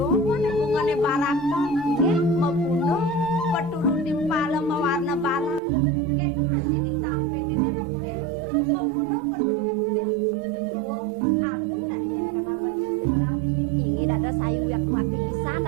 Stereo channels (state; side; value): drops out; left; at 5.6 s